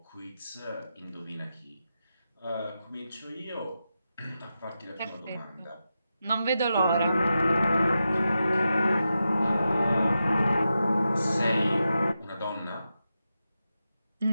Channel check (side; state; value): both; inverted; correlation -0.89